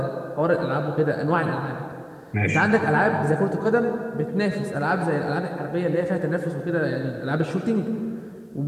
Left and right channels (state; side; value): identical; both; correlation 1.00